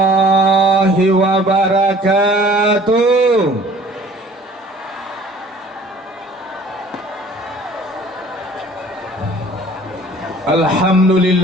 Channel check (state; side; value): normal; both; correlation 0.51